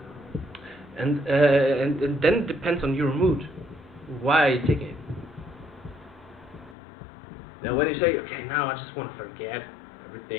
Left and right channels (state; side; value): drops out; right; at 6.8 s